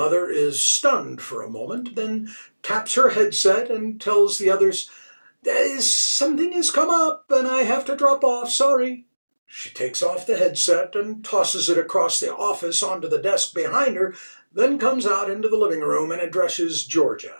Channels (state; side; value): inverted; both; correlation -1.00